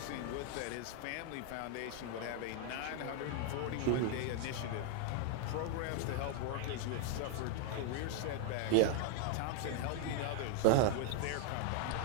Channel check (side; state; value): both; different; correlation 0.00